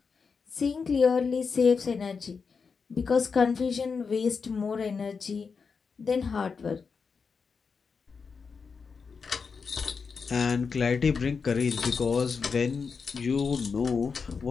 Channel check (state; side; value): quieter; right; 5.4 dB